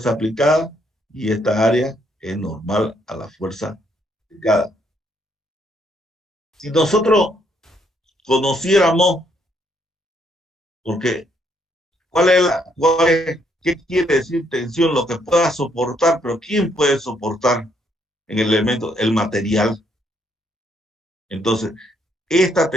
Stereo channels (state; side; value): normal; both; correlation 0.71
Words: aplicada y esta área es normal a la fuerza aplicada. Si nosotros conociéramos, porque ¿qué quiere decir tensión? Lo que pueda soportar, pero ¿quién puede soportar en el elemento? El material. Entonces, esta